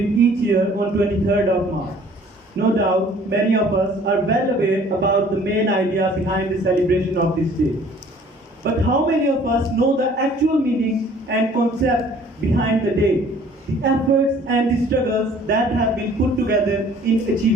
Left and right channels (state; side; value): normal; both; correlation 0.54